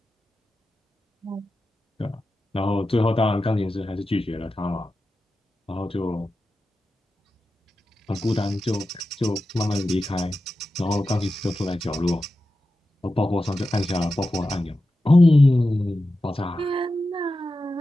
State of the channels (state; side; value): normal; both; correlation 0.92